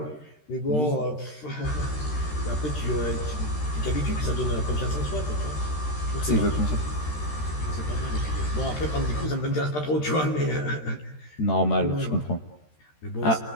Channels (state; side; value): late; right; 13 ms